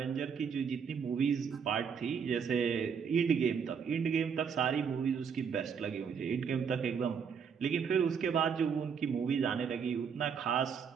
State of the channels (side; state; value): left; quieter; 6.6 dB